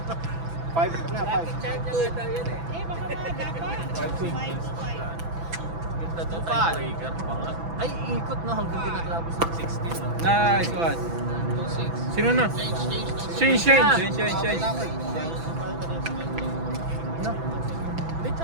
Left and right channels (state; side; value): late; left; 6.0 ms